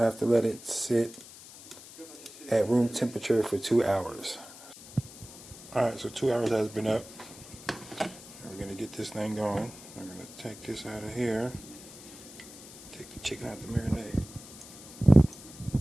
have to let it sit at room temperature for 2 hours. Alright, so 2 hours has been up. We're going to get this thing going. I'm going to take this out of here. Take the chicken out the marinade. Let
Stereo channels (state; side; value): noise; left; hiss, 17 dB below the sound